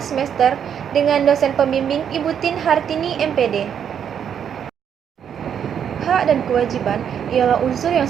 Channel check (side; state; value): left; quieter; 8.4 dB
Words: semester dengan dosen pembimbing Ibu Tin Hartini MPD. Hak dan kewajiban ialah unsur yang